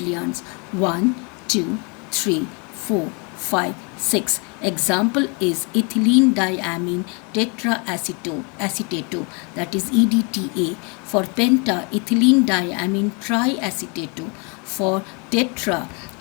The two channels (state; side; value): quieter; right; 33.2 dB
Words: 1, 2, 3, 4, 5, 6. Example is ethylene diamine tetraacetate, that is EDTA. For penta, ethylene diamine triacetate. For tetra,